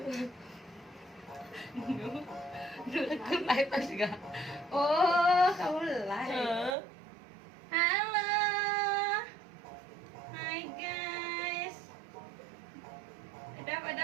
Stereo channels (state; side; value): drops out; left; at 6.8 s